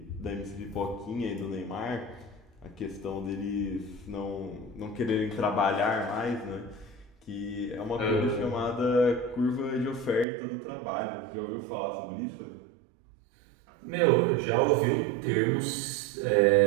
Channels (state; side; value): drops out; left; at 10.2 s